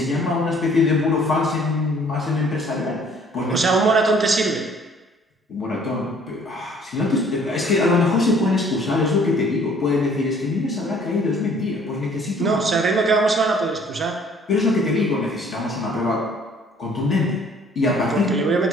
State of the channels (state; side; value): normal; both; correlation 0.57